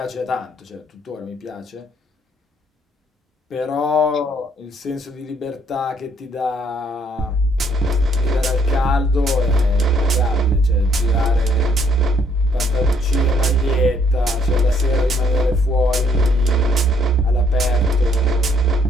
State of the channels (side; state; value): both; normal; correlation 0.67